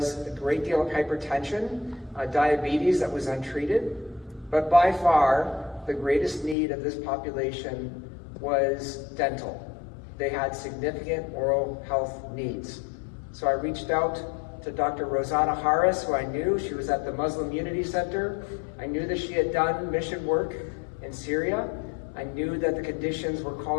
a great deal of hypertension, diabetes that was untreated. But by far, the greatest need of this population was dental. They had significant oral health needs. So I reached out to Dr. Rosanna Harris, who I knew. She was at the Muslim Unity Center. I knew that she had done mission work in Syria. I knew that the conditions were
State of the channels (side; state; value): right; drops out; at 6.6 s